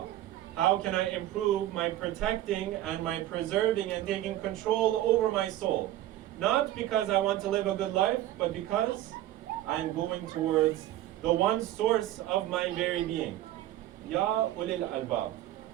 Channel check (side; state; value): left; quieter; 13.9 dB